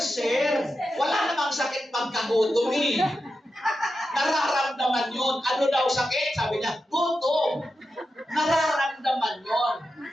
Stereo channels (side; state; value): both; normal; correlation 0.90